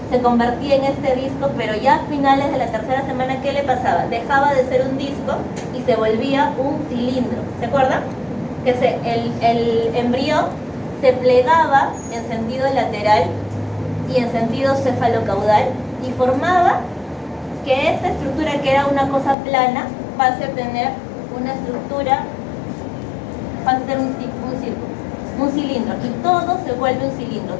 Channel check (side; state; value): right; drops out; at 19.4 s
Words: se convertía en este disco, pero ya a finales de la 3ª semana, ¿qué le pasaba? Dejaba de ser un disco y se volvía un cilindro. ¿Se acuerdan? Que el embrión se plegaba en sentido lateral y en sentido cefalocaudal y formaba que esta estructura, que era una cosa plana, pase a tener una estructura, pasa a ser un círculo, un cilindro, y todo se vuelve un cilindro,